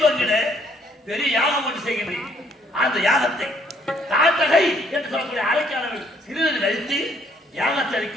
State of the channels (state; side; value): normal; both; correlation 0.66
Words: பெரிய யாகம் ஒன்று செய்கின்றேன். அந்த யாகத்தை தாட்டகை என்று சொல்லக்கூடிய அரைக்காரர்கள் சிறிது கழித்து யாகத்தை